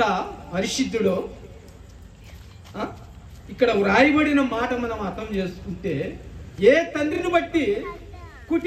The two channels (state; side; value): identical; both; correlation 1.00